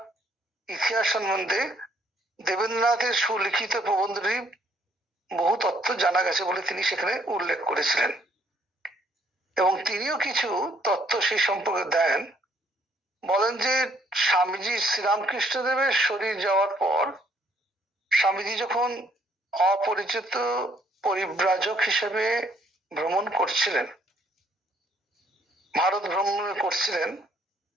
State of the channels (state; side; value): normal; both; correlation 0.66